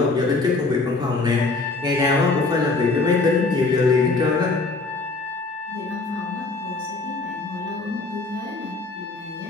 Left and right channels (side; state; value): right; quieter; 3.6 dB